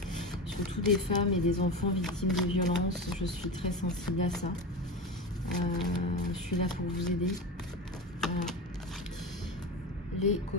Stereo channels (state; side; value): normal; both; correlation 0.24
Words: Surtout des femmes et des enfants victimes de violences. Je suis très sensible à ça. Je suis là pour vous aider. Voilà. Les